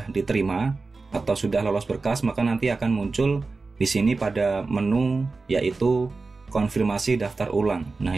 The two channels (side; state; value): left; quieter; 3.9 dB